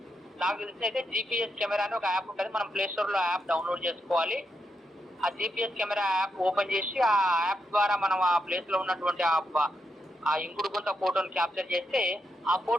నాకు తెలిసి అయితే GPS కెమెరా అని ఒక యాప్ ఉంటుంది. మనం ప్లేస్టోర్లో యాప్ డౌన్లోడ్ చేసుకోవాలి. ఆ GPS కెమెరా యాప్ ఓపెన్ చేసి ఆ యాప్ ద్వారా మనం ఆ ప్లేస్లో ఉన్నటువంటి ఆ ఇంకుడు గుంత ఫోటోని క్యాప్చర్ చేస్తే ఆ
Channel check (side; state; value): both; normal; correlation 0.82